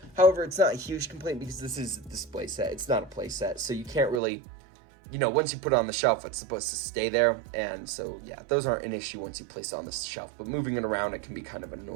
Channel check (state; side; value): drops out; left; at 4.2 s